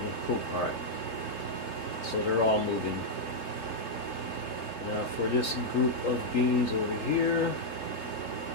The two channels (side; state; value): right; late; 3.0 ms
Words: Cool. Alright. So they're all moving. Now for this group of beans over here.